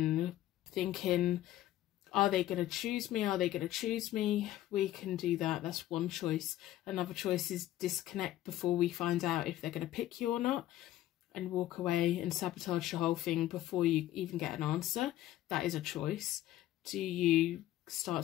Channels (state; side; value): quieter; right; 14.0 dB